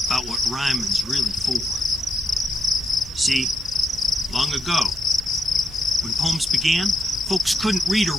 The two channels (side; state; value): both; normal; correlation 0.81